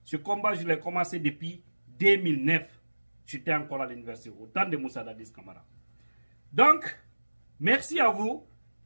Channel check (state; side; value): inverted; both; correlation -1.00